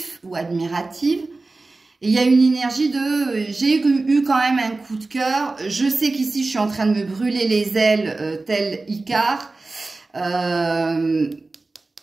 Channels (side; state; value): left; quieter; 3.4 dB